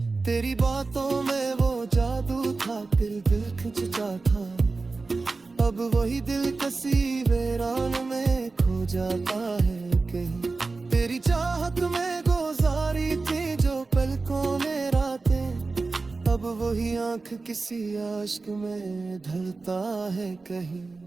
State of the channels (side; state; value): left; quieter; 3.8 dB